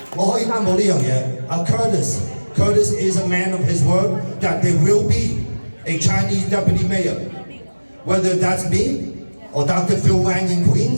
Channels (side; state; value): both; inverted; correlation -1.00